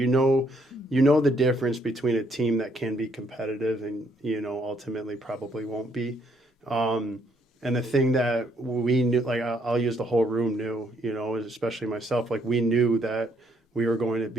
know the difference between a team that can be competitive and ultimately probably won't be. And the thing that we knew, like I'll use the whole room knew, especially myself, like we knew that we were going to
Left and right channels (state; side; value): normal; both; correlation 0.70